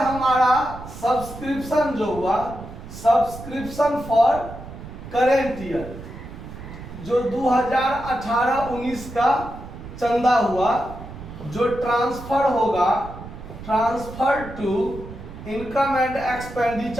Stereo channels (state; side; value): noise; right; rumble, 13 dB below the sound